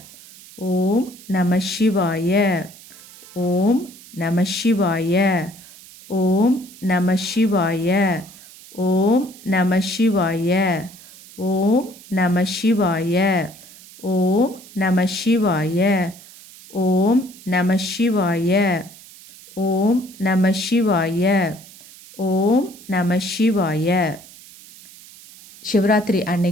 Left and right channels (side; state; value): right; noise; hiss, 20 dB below the sound